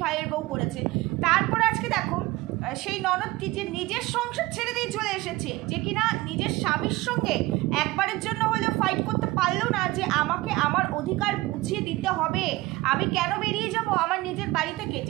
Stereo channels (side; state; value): left; quieter; 20.0 dB